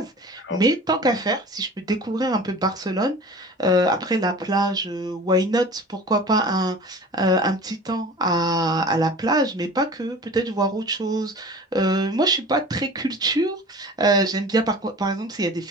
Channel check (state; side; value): normal; both; correlation 0.40